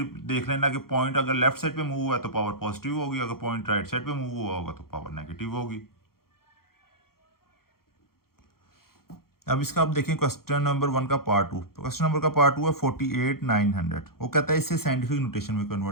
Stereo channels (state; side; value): late; right; 0.93 ms